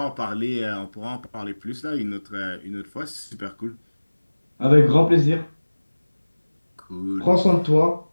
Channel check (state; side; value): inverted; both; correlation -1.00